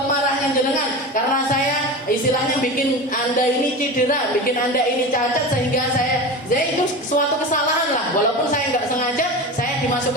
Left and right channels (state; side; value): normal; both; correlation 0.28